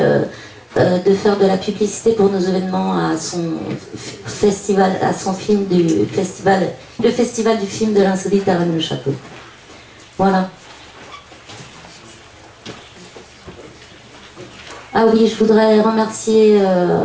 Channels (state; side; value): identical; both; correlation 1.00